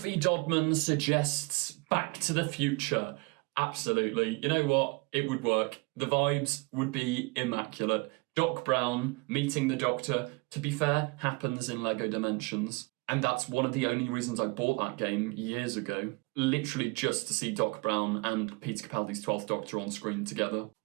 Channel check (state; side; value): quieter; left; 28.0 dB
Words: Dodman suggests Back to the Future. Absolutely. You know what? It would work. The vibes would be immaculate. Doc Brown meeting the Doctor, to be fair, happens in Lego Dimensions. And that's one of the only reasons I bought that game years ago. Literally just to see Doc Brown and Peter Capaldi's 12th Doctor on screen together.